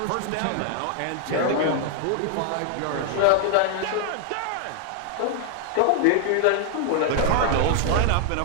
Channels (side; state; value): both; different; correlation 0.00